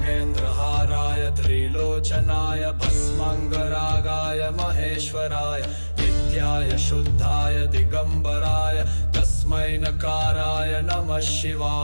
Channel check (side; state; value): both; inverted; correlation -1.00